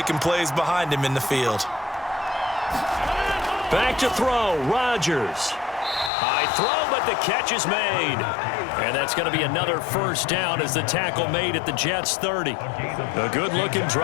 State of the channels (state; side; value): drops out; right; at 6.1 s